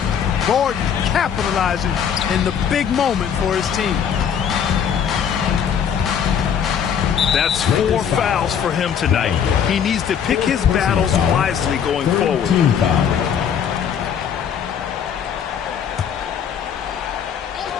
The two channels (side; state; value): right; quieter; 8.0 dB